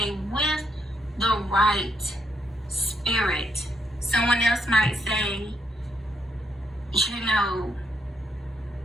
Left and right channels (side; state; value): both; normal; correlation 0.77